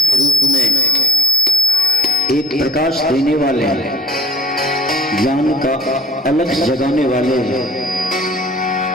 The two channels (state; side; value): normal; both; correlation 0.47